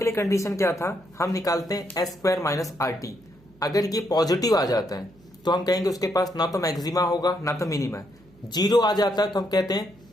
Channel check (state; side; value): noise; right; hum, 29 dB below the sound